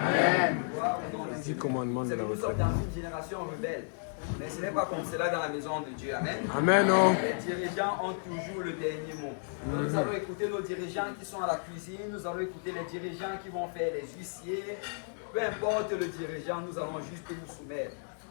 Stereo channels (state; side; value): silent; right; digital silence